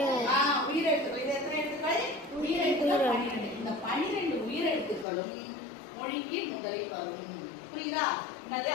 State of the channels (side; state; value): right; drops out; at 5.1 s